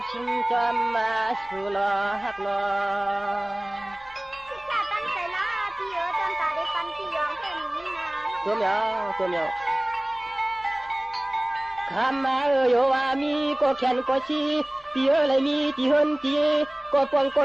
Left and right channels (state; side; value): noise; right; rumble, 30 dB below the sound